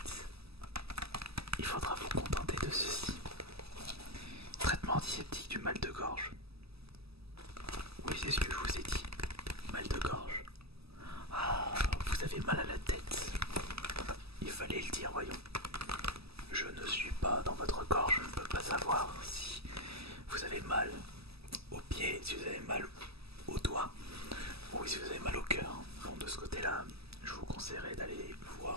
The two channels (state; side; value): late; left; 0.78 ms